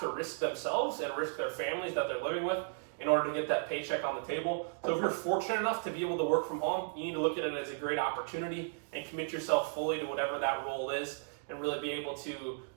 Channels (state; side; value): silent; left; digital silence